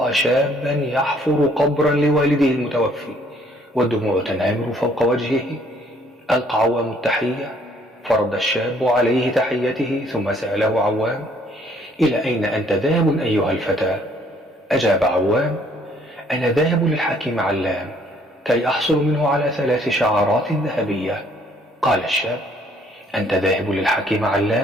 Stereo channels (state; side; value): normal; both; correlation 0.63